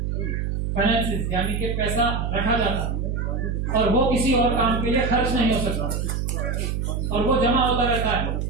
फाइनेंसिस यानी कि पैसा रखा जाता है और वो किसी और काम के लिए खर्च नहीं हो सकता और वो जमा होता रहता है।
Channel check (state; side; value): noise; right; hum, 1 dB below the sound